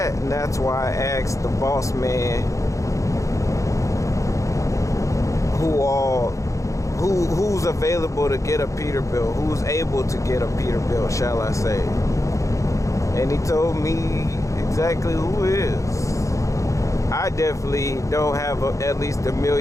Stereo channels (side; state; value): right; late; 0.15 ms